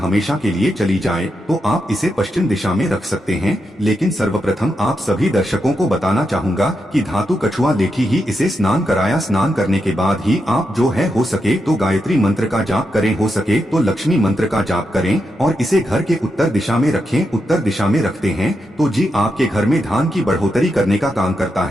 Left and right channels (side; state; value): both; normal; correlation 0.85